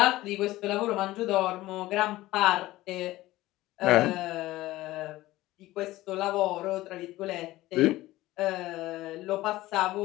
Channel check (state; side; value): quieter; right; 17.1 dB